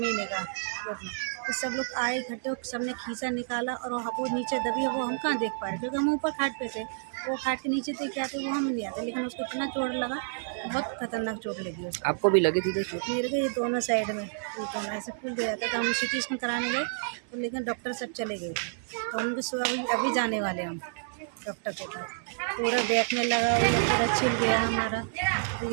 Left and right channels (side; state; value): left; silent; 58 dB below the other